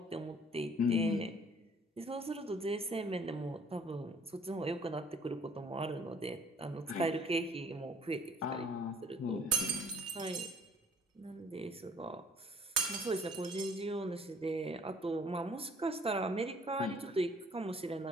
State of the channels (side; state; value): both; normal; correlation 0.56